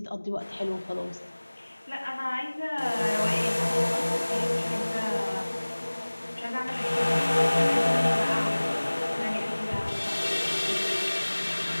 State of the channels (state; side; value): inverted; both; correlation -1.00